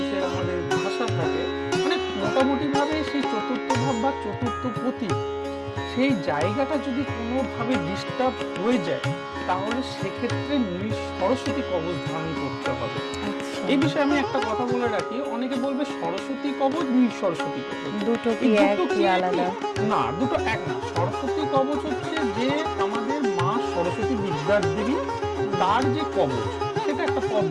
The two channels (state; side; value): identical; both; correlation 1.00